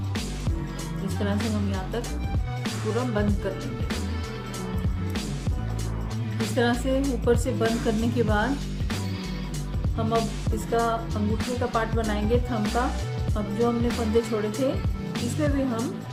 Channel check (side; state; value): both; identical; correlation 1.00